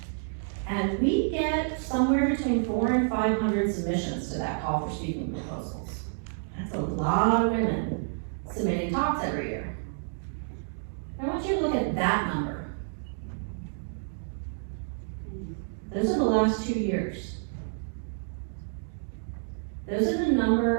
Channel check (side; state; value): left; silent; digital silence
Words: And we get somewhere between 400 and 500 submissions to that call for speaking proposals. That's a lot of women submitting talks every year. I want you to look at that number. Those are the last 2 years. Those are the